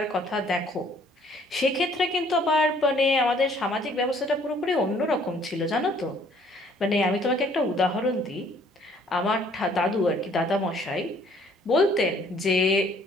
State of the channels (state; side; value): normal; both; correlation 0.60